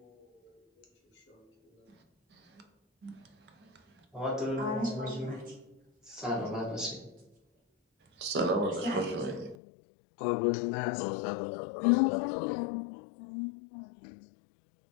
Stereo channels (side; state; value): right; drops out; at 9.6 s